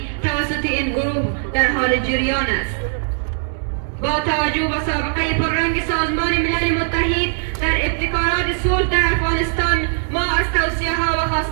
توسط این گروه در حال جریان است. با توجه به سابقه پررنگ سازمان ملل متحد در ابتکارات صلح در افغانستان، ما از توصیه ها و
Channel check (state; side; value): silent; left; 66 dB below the other